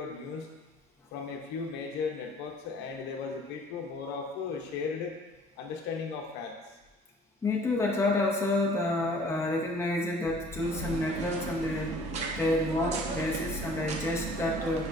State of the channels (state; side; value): normal; both; correlation 0.53